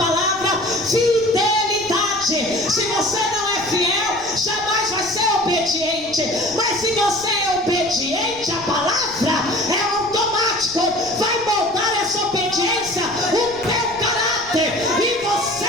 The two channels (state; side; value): noise; right; rumble, 19 dB below the sound